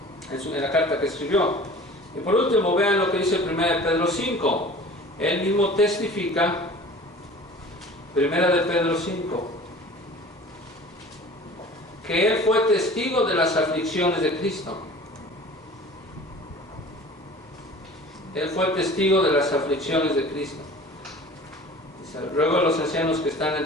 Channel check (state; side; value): normal; both; correlation 0.43